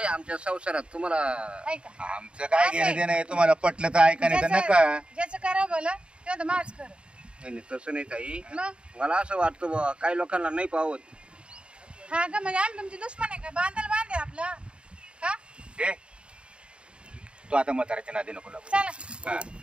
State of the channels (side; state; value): left; late; 0.055 ms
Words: आमच्या संसारात तुम्हाला ऐका आमचं काय घेणं देणं आहे, तुम्हाला पटलं तर ऐका नाही तर नका. ज्याचं करा बोला तेव्हा तर माझ कर. नाही नाही, तसं नाही ताई. मग मला असं वाटतं बुवा, काही लोकांना नाही पावत. हा का म्हणजे आम्ही तुमची दुश्मन आहे का? बांधाल बांधे आपला का? हे तू आता म्हाताऱ्याच्या नादी नको लागू. चला हा.